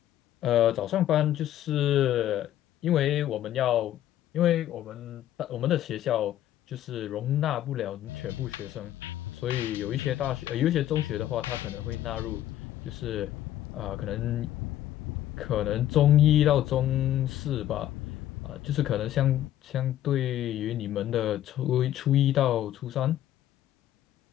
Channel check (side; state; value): right; quieter; 12.4 dB